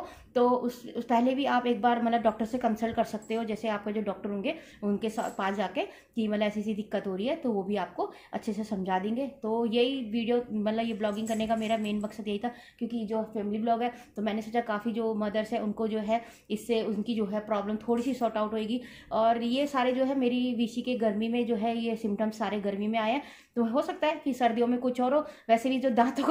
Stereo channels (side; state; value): both; identical; correlation 1.00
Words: तो उस पहले भी आप एक बार मतलब डॉक्टर से कंसल्ट कर सकते हो। जैसे आपका जो डॉक्टर होंगे उनके पास जाके कि मतलब ऐसी दिक्कत हो रही है, तो वो भी आपको अच्छे से समझा देंगे। तो यही वीडियो मतलब ये ब्लॉगिंग करने का मेरा मेन मकसद यही था, क्योंकि जो फैमिली ब्लॉग है तो मैंने सोचा काफ़ी जो मदर्स है उनको जो है इससे उनकी जो है प्रॉब्लम थोड़ी सी सॉर्ट आउट होएगी। और ये सारे जो है मेरी विशी के गर्मी में जो है ये सिम्टम्स सारे गर्मी में आए हैं, तो हो सकता है कि सर्दियों में कुछ और हो। वैसे भी जो दांतों